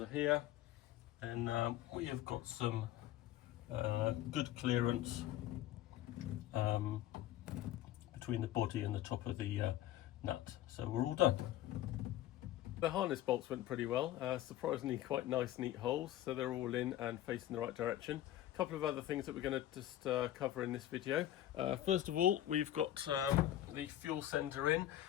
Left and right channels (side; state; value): right; quieter; 13.2 dB